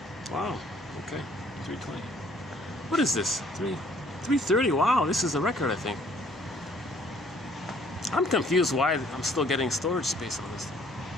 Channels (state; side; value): normal; both; correlation 0.60